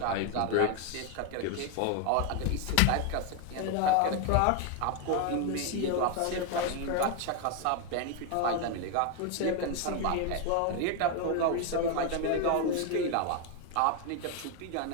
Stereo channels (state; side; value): different; both; correlation 0.01